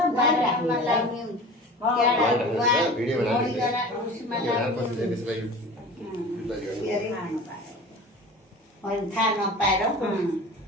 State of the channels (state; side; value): normal; both; correlation 0.37